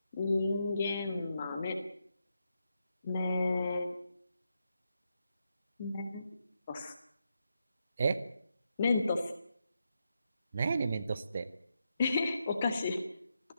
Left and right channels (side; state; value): both; inverted; correlation -0.84